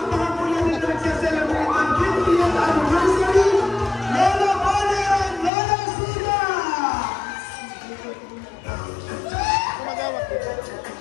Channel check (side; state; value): right; drops out; at 5.5 s